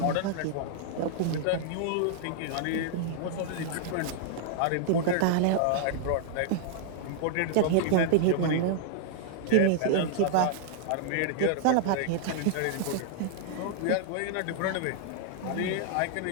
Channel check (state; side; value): different; both; correlation -0.01